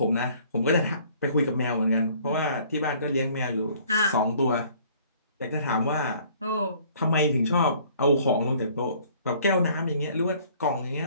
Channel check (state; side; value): inverted; both; correlation -0.56